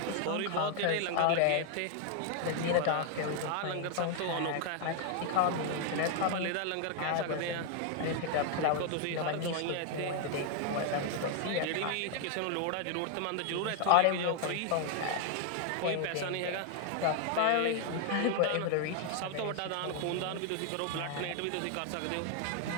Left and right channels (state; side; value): different; both; correlation 0.00